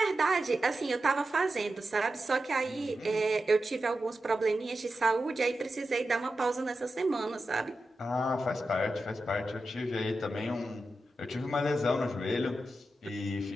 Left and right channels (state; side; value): normal; both; correlation 0.91